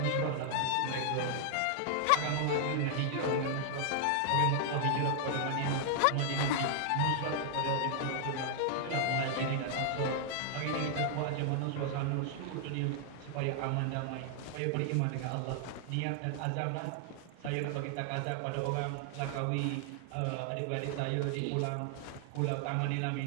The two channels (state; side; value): different; both; correlation 0.00